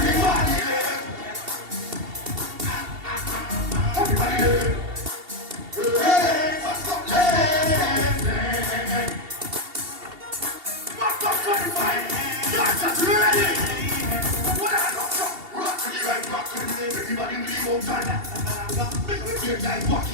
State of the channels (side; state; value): left; late; 2.7 ms